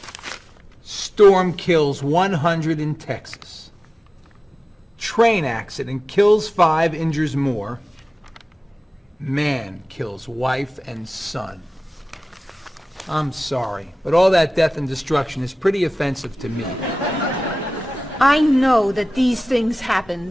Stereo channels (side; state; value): both; normal; correlation 0.97